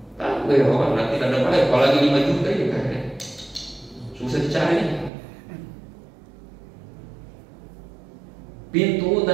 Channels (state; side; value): drops out; left; at 5.1 s